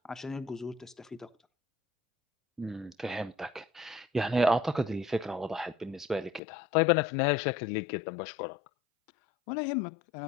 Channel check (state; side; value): drops out; right; at 6.4 s